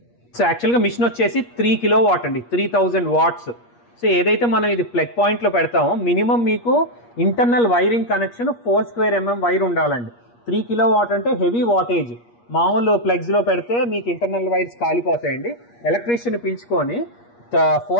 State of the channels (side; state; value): right; late; 8.4 ms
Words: సో యాక్చువల్గా మిషన్ వచ్చేసి 3 kilowatt అండి, 3000 watts. సో ఏదైతే మనం ఇది ప్లగ్ పాయింట్లో పెడతామో మినిమం మీకు internal wiring connection 4 square mm wire ఉండాలండి. 3 kilowatt అంటే హెవీ వాటేజ్. మామూలు ప్లగ్స్లో పెడితే మీకు ఇంటర్నల్ వైర్స్ కాలిపోతాయండి. ఎలక్ట్రీషియన్ పిలుచుకొని